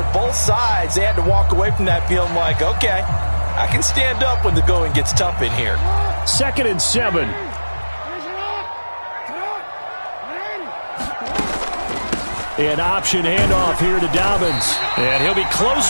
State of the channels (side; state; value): both; inverted; correlation -1.00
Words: both sides, they had to walk away from that feeling like, okay, I can stand up when the going gets tough in here. 2nd and 7. An option handoff here to Dobbins. And he'll be close